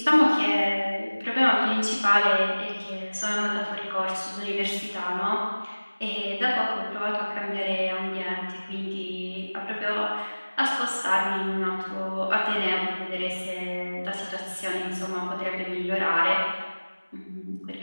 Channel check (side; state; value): both; inverted; correlation -1.00